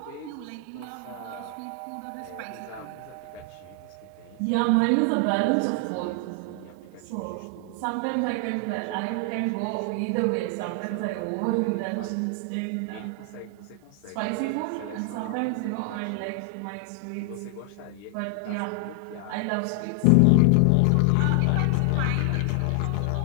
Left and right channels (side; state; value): both; different; correlation 0.00